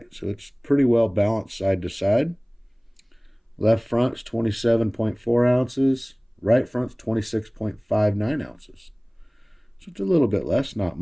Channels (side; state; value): both; identical; correlation 1.00